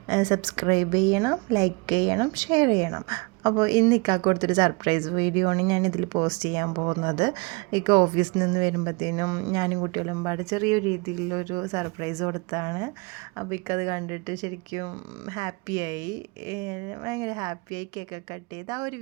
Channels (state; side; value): quieter; left; 29.0 dB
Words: സബ്സ്ക്രൈബ് ചെയ്യണം, ലൈക്ക് ചെയ്യണം, ഷെയർ ചെയ്യണം. അപ്പോൾ ഇന്ന് ഇക്കാക്ക് കൊടുത്തൊരു സർപ്രൈസ് വീഡിയോ ആണ് ഞാനിതിൽ പോസ്റ്റ് ചെയ്യാൻ പോകുന്നത്. ഇക്ക ഓഫീസിൽ നിന്ന് വരുമ്പോഴത്തേനും ഞാനും കുട്ടികളും പാട് ചെറിയൊരു രീതിയിലൊരു സർപ്രൈസ് കൊടുത്താണ്. അപ്പോൾ ഇക്കത് കണ്ടിട്ട് ശരിക്കും ഹാപ്പിയായി, ഭയങ്കര ഹാപ്പിയായി. കേക്കൊക്കെ കട്ട് ചെയ്ത് ആ ഒരു